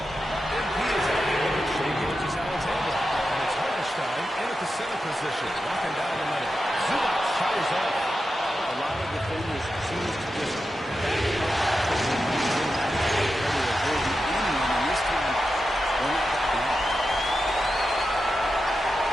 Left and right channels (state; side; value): normal; both; correlation 0.90